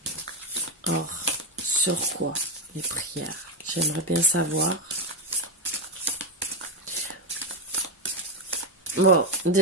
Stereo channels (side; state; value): both; normal; correlation 0.10